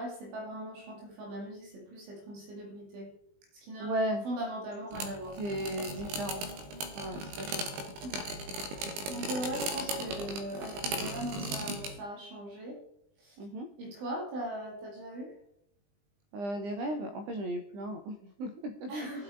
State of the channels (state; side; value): late; left; 20 ms